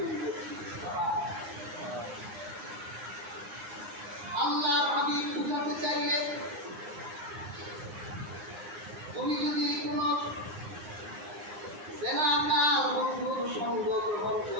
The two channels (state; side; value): late; left; 9.7 ms